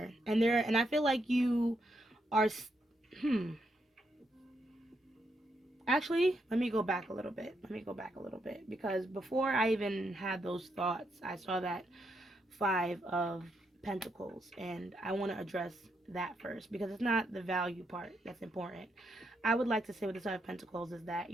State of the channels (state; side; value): normal; both; correlation 0.79